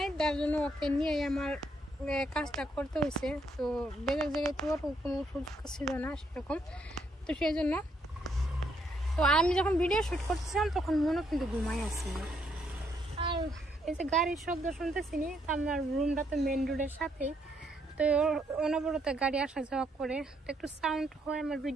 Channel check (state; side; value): normal; both; correlation 0.73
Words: তার জন্য ওকে নিয়ে আমার কাজটা করতে হয়েছে। তো বেলের জায়গায় তো কোনো সুযোগ ছিল না সেরকম, তো সেই জন্য। তো আমি যখন ভিডিও শ্যুট করতেছিলাম তখন মনে কিন্তু ঘুমাই আসছিল। আর এই যে গাড়ির শব্দ শুনতেছি নি, তো আমার রুমটা তো মেন রোডের সাথেই, তো অনবরত গাড়ি আসা যাওয়া করে, তো একটু সাউন্ড হয় আমার